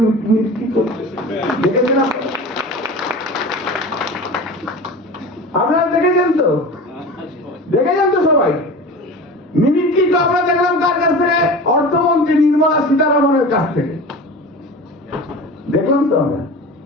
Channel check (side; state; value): both; normal; correlation 0.34